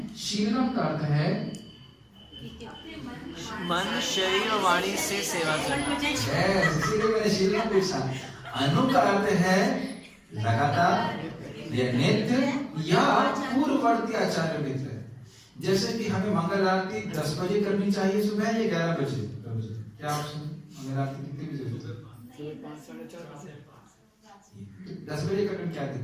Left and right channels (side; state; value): both; identical; correlation 1.00